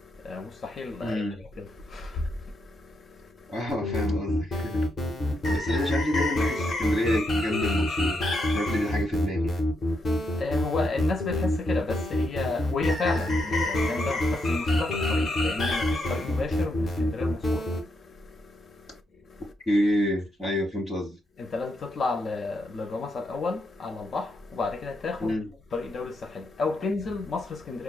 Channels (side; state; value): both; normal; correlation 0.80